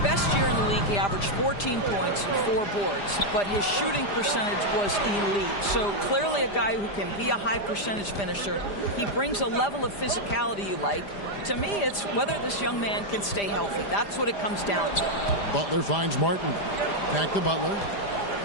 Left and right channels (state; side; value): late; right; 5.0 ms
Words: year in the league, he averaged 14 points and 4 boards, but his shooting percentage was elite. So clearly a guy who can be a high percentage finisher. He brings a level of physicality you like. To me, it's whether this young man can stay healthy. That's what it comes down to. Butler finds Martin. Back to Butler.